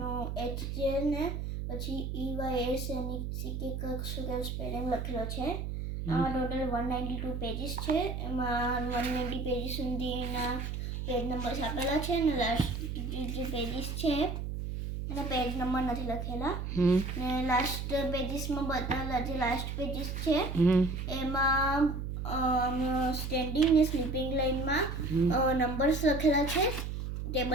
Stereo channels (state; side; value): noise; right; hum, 4 dB below the sound